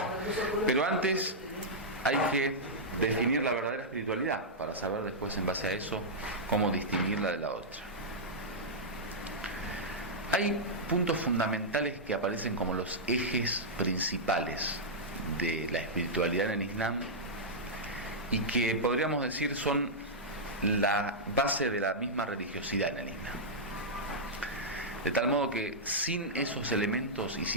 Pero antes hay que definir la verdadera espiritualidad para saber después, en base a eso, cómo distinguirla de la otra. Hay puntos fundamentales que aparecen como los ejes principales de la espiritualidad en el Islam y que podríamos decir son la base de la misma religiosidad en el Islam. De tal modo que sin esos elementos y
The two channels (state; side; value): normal; both; correlation -0.09